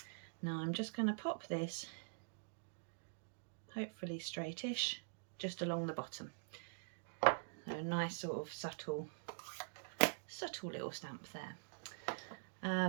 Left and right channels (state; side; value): silent; left; digital silence